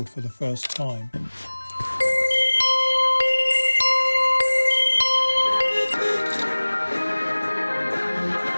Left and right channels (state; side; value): inverted; both; correlation -1.00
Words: for the first time.